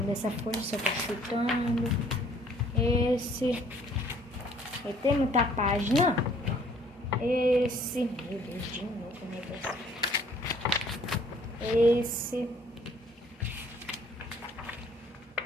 dessa folha, só tô chutando. Esse. E tem muita página. Esse. Meu Deus, de novo o negócio. Esse.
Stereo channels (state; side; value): normal; both; correlation 0.59